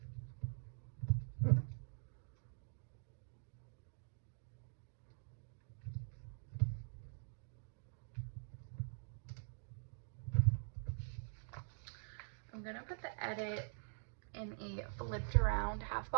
I'm gonna put the edit in a flipped around half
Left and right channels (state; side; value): silent; left; digital silence